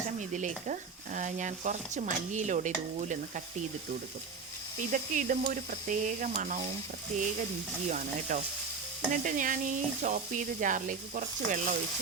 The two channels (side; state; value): left; quieter; 4.9 dB